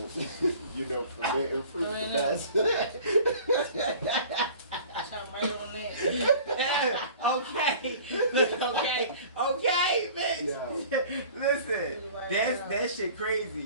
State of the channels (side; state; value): both; inverted; correlation -0.45